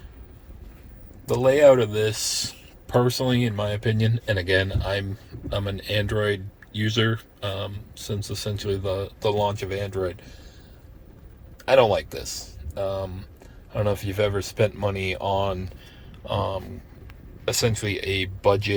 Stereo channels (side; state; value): both; identical; correlation 1.00